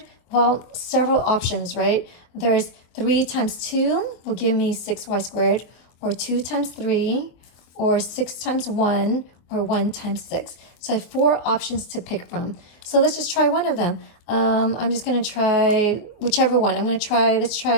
Well, several options, right? There's 3 times 2 will give me 6y squared, or 2 times 3, or 6 times 1, or 1 times 6. So I have 4 options to pick from. So let's just try one of them. I'm just going to try whichever one. Let's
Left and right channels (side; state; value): right; late; 24 ms